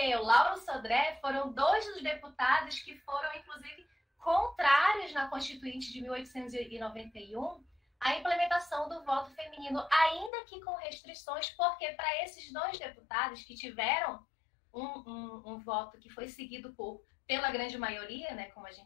o Lauro Sodré foram 2 dos deputados que foram, inclusive, contrários na Constituinte de 1891 à implementação implementação do voto feminino, ainda que com restrições, porque para esses 2 deputados que tiveram um voto que foi seguido pela grande maioria, né, como a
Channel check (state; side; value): drops out; right; at 10.3 s